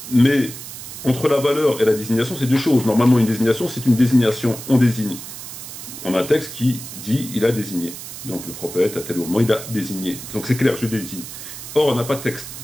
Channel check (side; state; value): right; noise; hiss, 11 dB below the sound